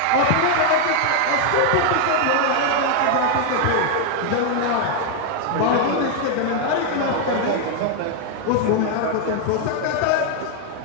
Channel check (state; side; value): different; both; correlation 0.00